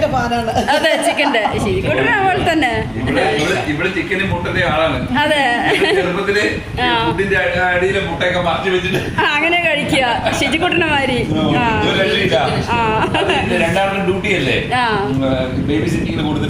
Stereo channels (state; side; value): identical; both; correlation 1.00